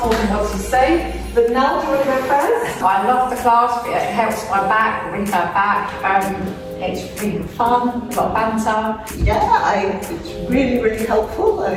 told them what to say, but Nell, do you want to go first? I love the class, it helps my back, brings my back, it's really fun, a lot of banter. Yeah, it's really helpful. I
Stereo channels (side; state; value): both; identical; correlation 1.00